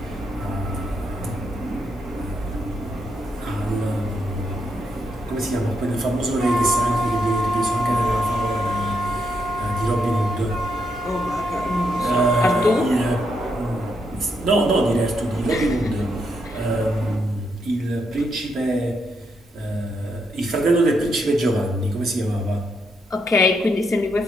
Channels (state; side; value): normal; both; correlation 0.80